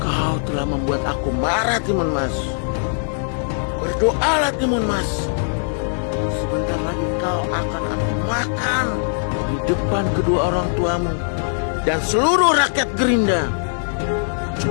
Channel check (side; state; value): right; silent; digital silence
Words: kau telah membuat aku marah, Timun Mas. Berdoalah, Timun Mas. Sebentar lagi kau akan aku makan di depan kedua orang tuamu dan seluruh rakyat Gerinda,